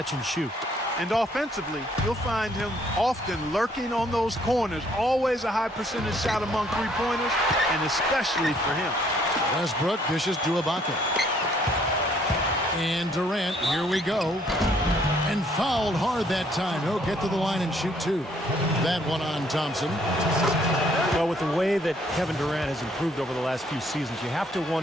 and shoot. And offensively, you'll find him often lurking on those corners. Always a high percentage shot among three-pointers, and especially for him. Westbrook dishes to Ibaka. And Durant, here we go. And fouled hard that time. He'll get to the line and shoot two. That one on Thompson. Well, with the way that Kevin Durant has improved over the last few seasons, you have to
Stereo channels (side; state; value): both; normal; correlation 0.65